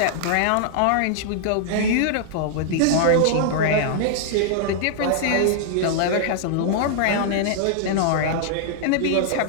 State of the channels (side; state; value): both; different; correlation -0.01